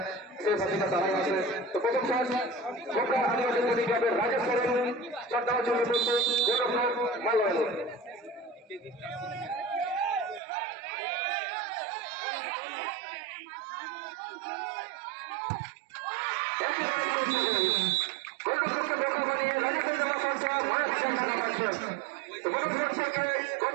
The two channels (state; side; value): drops out; left; at 10.4 s